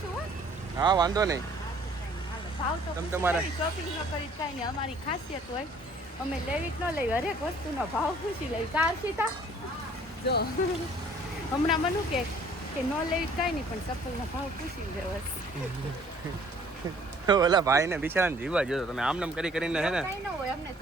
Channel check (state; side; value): normal; both; correlation 0.56